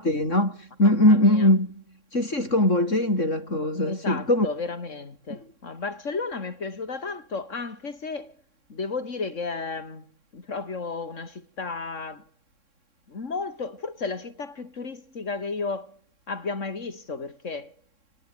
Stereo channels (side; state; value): right; late; 3.6 ms